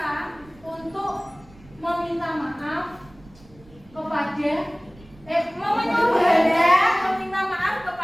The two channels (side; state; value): right; noise; rumble, 24 dB below the sound